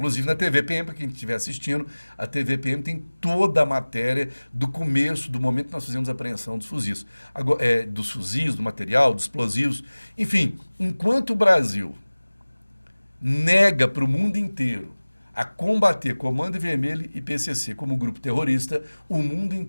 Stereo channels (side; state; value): both; inverted; correlation -1.00